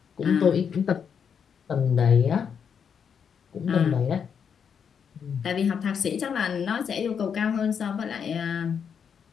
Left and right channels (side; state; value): right; quieter; 7.2 dB